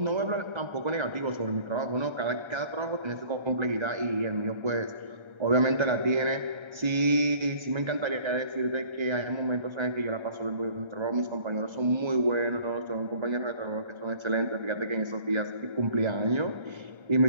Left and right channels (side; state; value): left; late; 1.3 ms